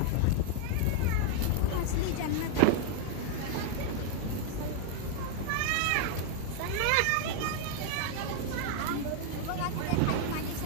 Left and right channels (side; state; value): both; different; correlation 0.00